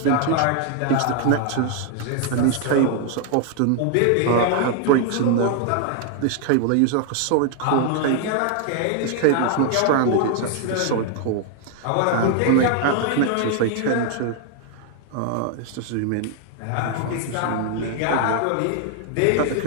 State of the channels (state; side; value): different; both; correlation 0.00